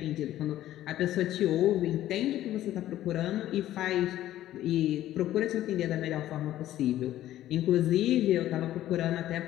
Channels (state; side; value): quieter; right; 13.4 dB